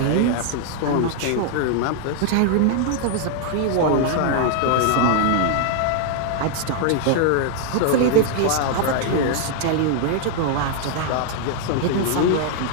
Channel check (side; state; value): both; different; correlation 0.00